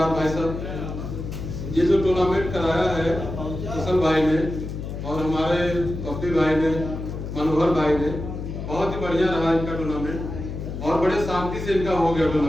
भाई साहब, ये जो टूर्नामेंट कराया है कुशल भाई ने और हमारे कपिल भाई ने, मनोहर भाई ने, बहुत ही बढ़िया रहा इनका टूर्नामेंट और बड़े शांति से इनका हो गया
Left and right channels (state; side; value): noise; left; hum, 7 dB below the sound